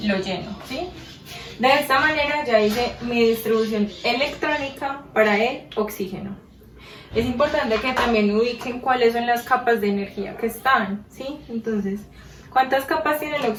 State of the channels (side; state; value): both; identical; correlation 1.00